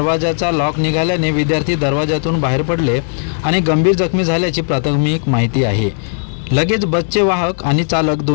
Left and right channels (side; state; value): right; silent; digital silence